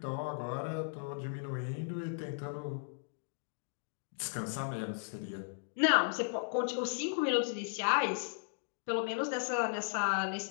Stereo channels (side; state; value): right; silent; digital silence